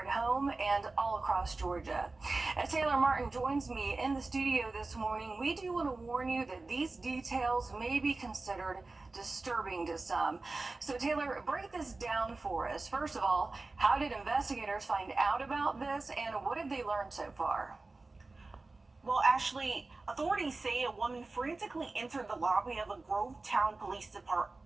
at home and all across Georgia. As Taylor Martin joins me in the studio this morning, we do want to warn you that these details may be considered disturbing to some. So Taylor, break this down for us. First of all, how did investigators find out about this, and what have they learned so far? Well, Ashley, authorities say a woman frantically entered the lobby of a Grovetown Police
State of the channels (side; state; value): left; quieter; 3.4 dB